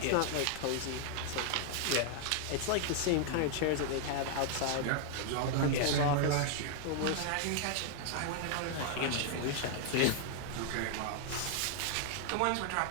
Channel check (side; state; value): both; different; correlation 0.00